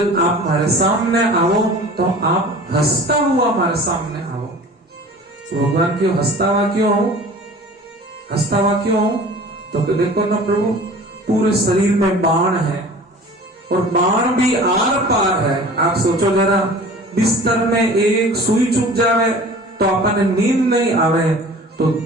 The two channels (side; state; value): both; normal; correlation 0.43